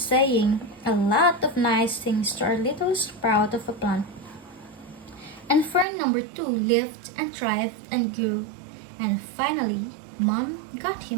a lot of nice things to our little sprout of a plant. And fern number two lived and thrived and grew. And finally, Mom got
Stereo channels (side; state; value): left; drops out; at 5.9 s